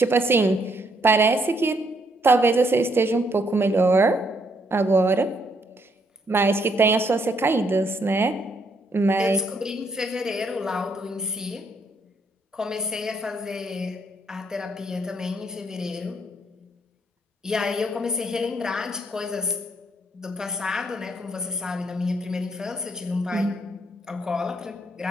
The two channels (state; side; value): normal; both; correlation 0.72